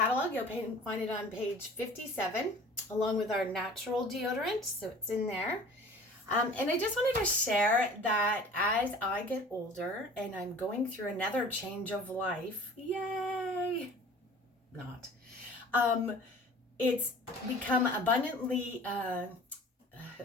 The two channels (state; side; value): normal; both; correlation 0.45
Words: you'll find it on page 57, along with our natural deodorant. So it's in there. And I just wanted to share that as I get older and I'm going through another change of life, yay! Not. It's become abundantly